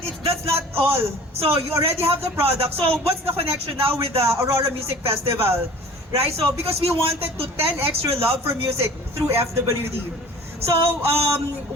that's not all. So you already have the product. So what's the connection now with the Aurora Music Festival? Right? So because we wanted to 10x your love for music through FWD. So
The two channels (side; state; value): both; normal; correlation 0.45